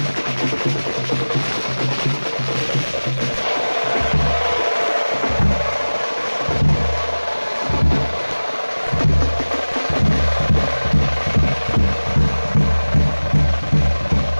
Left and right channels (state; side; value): inverted; both; correlation -1.00